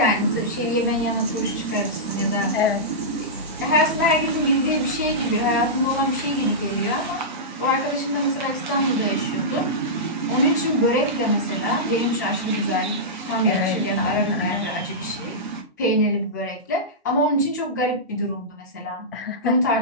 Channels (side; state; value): both; normal; correlation -0.14